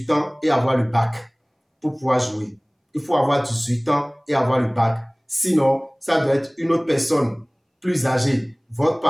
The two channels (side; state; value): both; identical; correlation 1.00